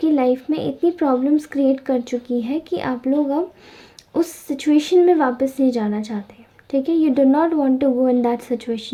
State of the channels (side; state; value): both; identical; correlation 1.00